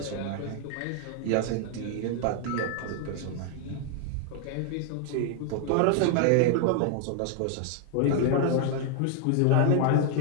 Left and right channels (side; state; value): both; different; correlation 0.00